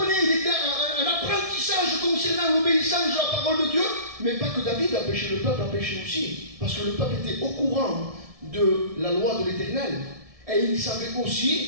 il était un apprentissage concernant l'obéissance de la parole de Dieu. Mais pas que David a péché, le peuple a péché aussi. Parce que le peuple était au courant de la loi de l'Éternel. Et il savait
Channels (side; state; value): left; late; 1.7 ms